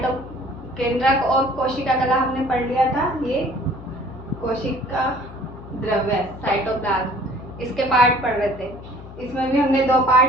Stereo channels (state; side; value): noise; left; hum, 15 dB below the sound